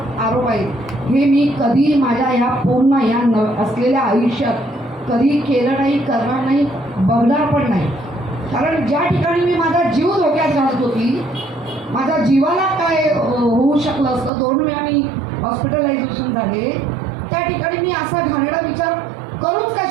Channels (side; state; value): left; drops out; at 14.3 s